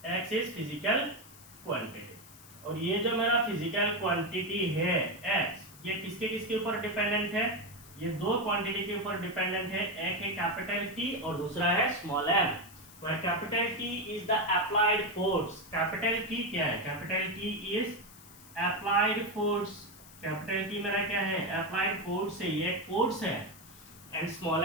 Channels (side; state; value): left; noise; hiss, 20 dB below the sound